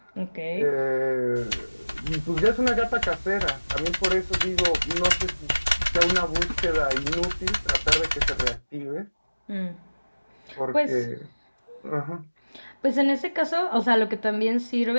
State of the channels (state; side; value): inverted; both; correlation -1.00